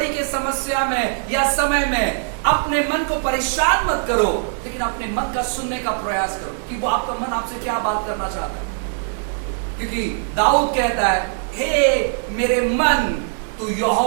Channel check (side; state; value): left; silent; digital silence